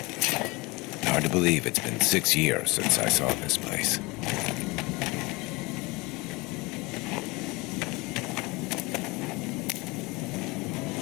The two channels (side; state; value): right; quieter; 24.5 dB